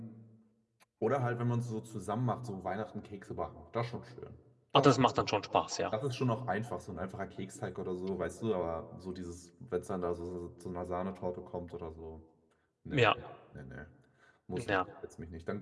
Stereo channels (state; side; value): identical; both; correlation 1.00